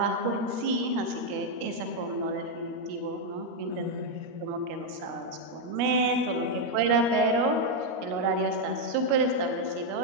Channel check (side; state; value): left; late; 13 ms